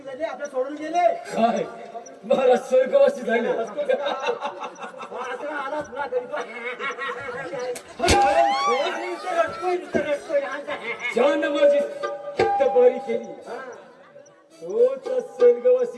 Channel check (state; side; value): identical; both; correlation 1.00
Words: झाले, आपल्या सोडून गेले. काय महाराज स्वर्गवासी झाले? असं आला तुला तरी तो. ज्यानं माझी चित्त बरी केली तोच